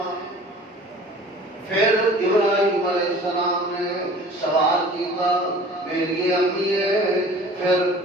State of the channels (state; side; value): normal; both; correlation 0.46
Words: پھر ابراہیم علیہ السلام نے سوال کیا میری امی ہے، پھر